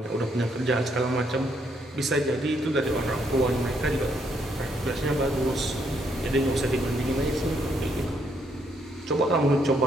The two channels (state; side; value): normal; both; correlation 0.73